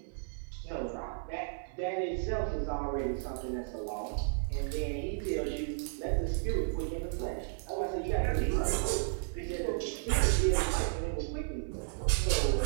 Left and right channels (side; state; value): left; silent; digital silence